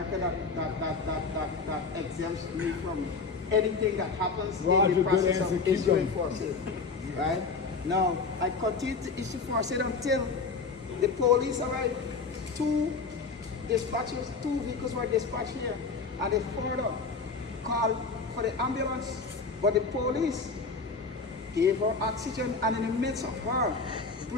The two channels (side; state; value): right; quieter; 4.5 dB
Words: that exempts me from anything that happens in the process of issuing force aid. Right? Now, I continue to issue force aid until the police arrived. Two vehicles were dispatched here, and they further called for the ambulance, but the police gave her oxygen, and in the midst of her